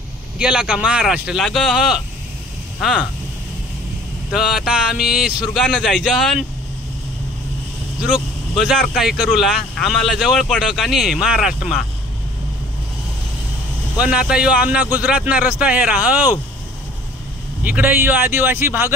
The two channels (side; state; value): both; normal; correlation 0.51